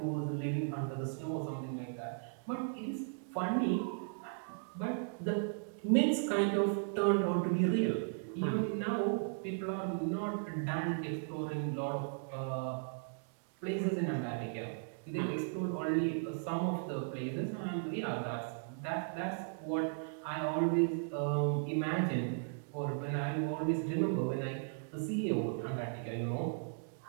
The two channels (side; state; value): left; silent; digital silence